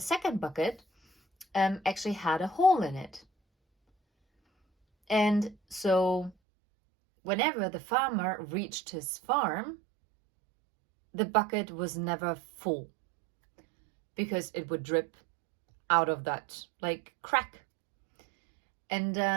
bucket actually had a hole in it. And so whenever the farmer reached his farm, the bucket was never full because it would drip out of that like crack. And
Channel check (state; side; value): drops out; left; at 6.4 s